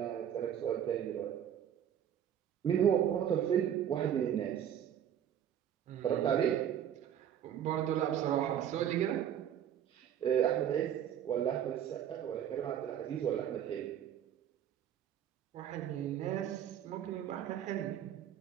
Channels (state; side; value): quieter; left; 9.9 dB